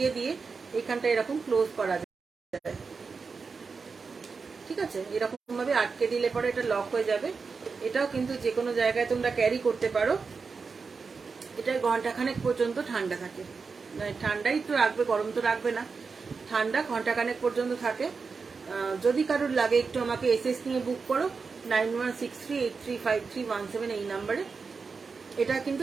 দিয়ে এখানটা এরকম ক্লোজ করা যায়। ঠিক আছে, এরকম ভাবে আটকে দিলে পরে এটা লক হয়ে যাবে। এটাও কিন্তু যে কোনো জায়গায় তোমরা ক্যারি করতে পারো। এটা ঘন্টাখানেক পর্যন্ত ঠান্ডা থাকে, ঠান্ডাই তো রাখবে, গরম তো রাখবে না, ঠান্ডা ঘন্টাখানেক পর্যন্ত থাকে। যদি কারোর লাগে একটু আমাকে এসএস নিয়ে বুক করো 9163835317 এই নাম্বারে। এটা কিন্তু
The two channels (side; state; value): left; quieter; 4.9 dB